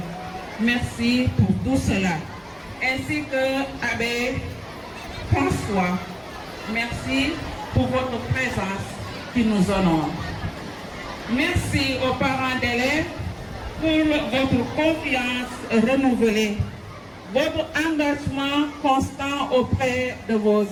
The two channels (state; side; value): identical; both; correlation 1.00